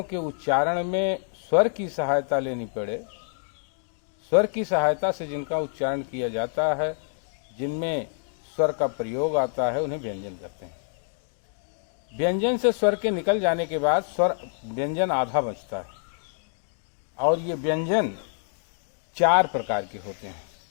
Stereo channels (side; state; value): right; silent; digital silence